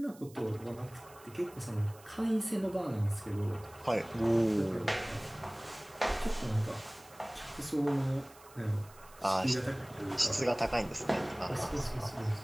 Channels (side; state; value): right; noise; hiss, 23 dB below the sound